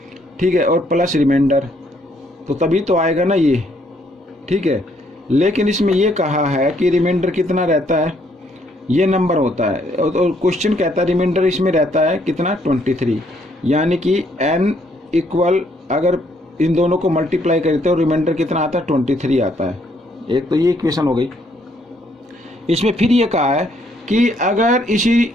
ठीक है, और प्लस रिमाइंडर, तो तभी तो आएगा ना ये। ठीक है, लेकिन इसमें ये कहा है कि रिमाइंडर कितना रहता है, ये नंबर होता है, और क्वेश्चन कहता है रिमाइंडर इसमें रहता है कितना 23, यानी कि n इक्वल, अगर इन दोनों को मल्टीप्लाई करते हो रिमाइंडर कितना आता है 23 आता है। एक तो ये इक्वेशन हो गई। इसमें फिर ये कहा है कि अगर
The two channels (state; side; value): normal; both; correlation 0.69